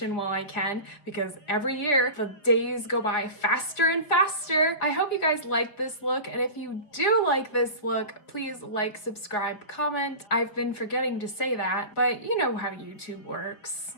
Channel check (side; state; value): right; late; 5.1 ms